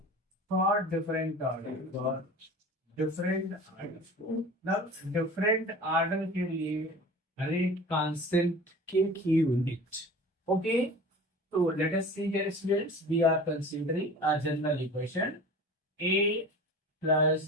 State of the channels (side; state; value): both; normal; correlation 0.38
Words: for different order, different order के लिए rate constant के की यूनिट। ओके, तो let us see here students, we are considering a general equation a plus